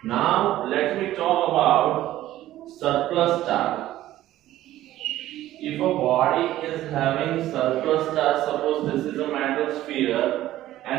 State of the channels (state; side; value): quieter; left; 14.3 dB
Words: Now let me talk about surplus charge. If a body is having surplus charge, suppose this is a metal sphere